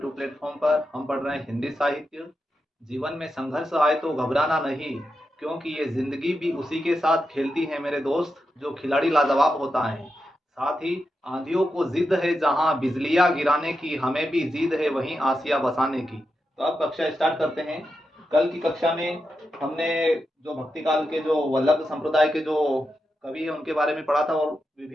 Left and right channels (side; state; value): both; normal; correlation 0.88